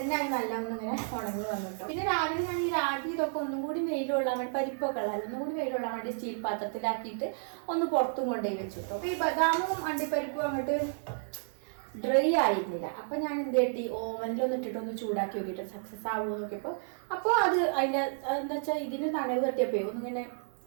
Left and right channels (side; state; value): left; silent; 57 dB below the other